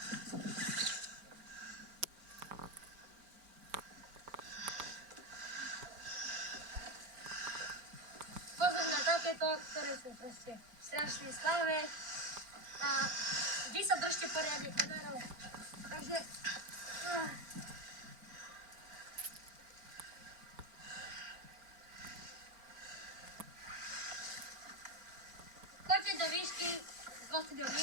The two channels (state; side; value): late; left; 4.4 ms